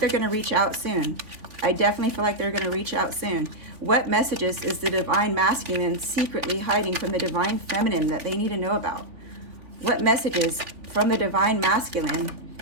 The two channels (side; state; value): left; late; 3.6 ms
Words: going to reach out soon. I definitely feel like they're going to reach out soon. What messages is the Divine Masculine secretly hiding from the Divine Feminine that they need to know about? What messages from the Divine Masculine